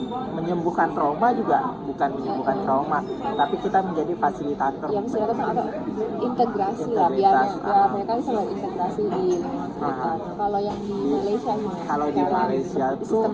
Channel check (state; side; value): identical; both; correlation 1.00